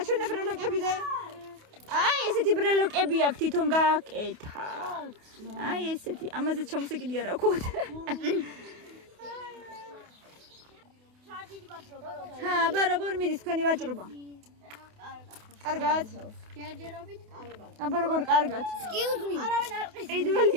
ბრელოკები და აი ესეთი ბრელოკები აქვს თვითონ გააკეთა. აი ესეთი, ამაზე ჩამოსეკიდი არა ხოთ. ჰა, ბარაბარ მიდის თქვენი ვაჭრობა. კარგად. ჯერჯერობით კარგად. აბა როგორ კარგად? Excuse me. არავინ არ ყის.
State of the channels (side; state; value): left; late; 28 ms